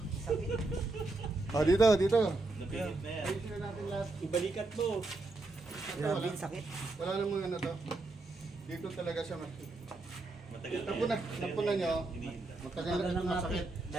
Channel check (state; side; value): quieter; left; 3.1 dB